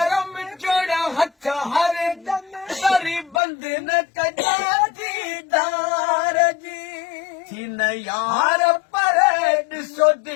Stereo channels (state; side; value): drops out; right; at 3.4 s